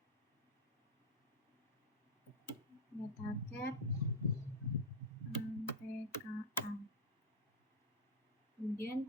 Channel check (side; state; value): both; normal; correlation -0.01